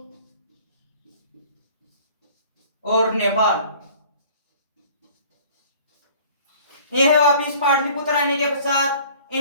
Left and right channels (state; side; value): inverted; both; correlation -0.50